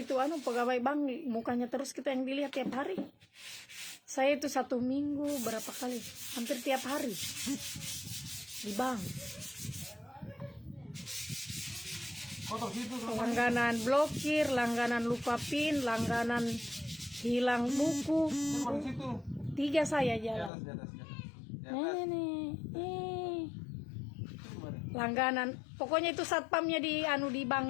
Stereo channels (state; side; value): drops out; right; at 20.5 s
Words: pegawai bank, mukanya terus kita yang dilihat tiap hari. Saya itu 1 minggu berapa kali, hampir tiap hari di bank. Kotor situ terus. Langganan blokir, langganan lupa PIN, langganan hilang buku. Di situ. 3 saya Di jalan. atas, di atas, di atas. Di atas. Ini. Itu kemarin. Langganan. Pokoknya itu satpamnya di di